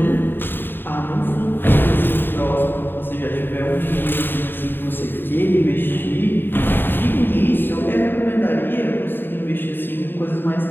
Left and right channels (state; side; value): late; right; 0.096 ms